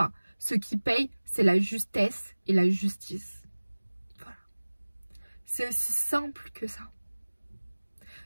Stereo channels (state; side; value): inverted; both; correlation -1.00